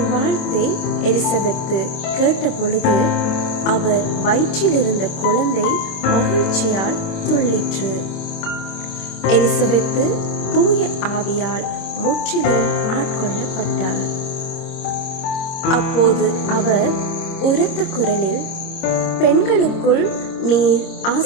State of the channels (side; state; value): right; late; 26 ms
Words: வாழ்த்தை எலிசபெத்து கேட்ட பொழுது அவர் வயிற்றிலிருந்த குழந்தை மகிழ்ச்சியால் துள்ளிற்று. எலிசபெத்து தூய ஆவியால் முற்றிலும் ஆட்கொள்ளப்பட்டார். அப்போது அவர் உரத்த குரலில், பெண்களுக்குள் நீர்